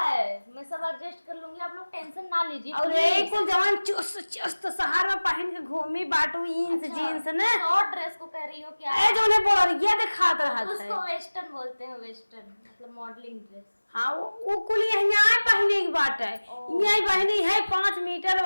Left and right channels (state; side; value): inverted; both; correlation -1.00